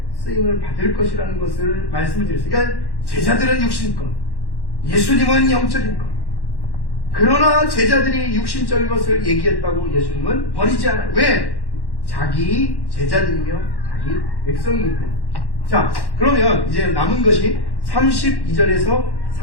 쓰임을 받을 것이라는 것을 말씀을 드렸어요. 그러니까 제자들은 육신것, 예수님은 영적인 것. 그러나 제자들이 육신적인 것을 얘기했다고 예수님은 버리지 않아요. 왜? 자기 제자들이며 자기 백성이기 때문에. 자, 그러면 이제 남은 것이 32절에서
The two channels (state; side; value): late; right; 1.1 ms